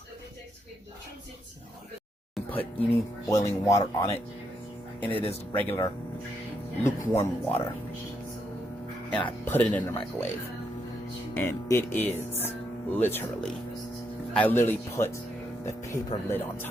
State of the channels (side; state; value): both; normal; correlation 0.78